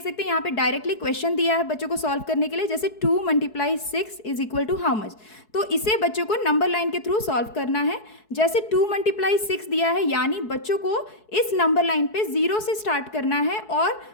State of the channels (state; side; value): late; right; 4.7 ms